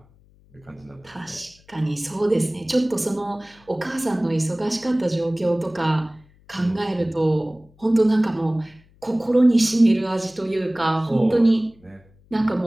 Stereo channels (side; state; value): left; noise; hum, 30 dB below the sound